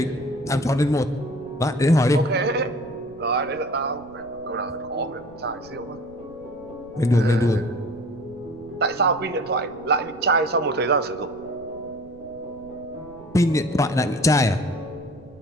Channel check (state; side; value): noise; right; rumble, 23 dB below the sound